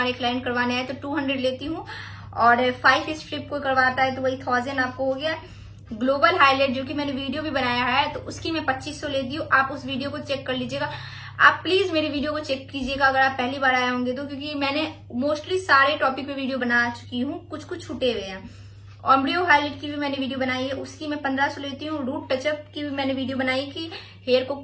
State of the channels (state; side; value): identical; both; correlation 1.00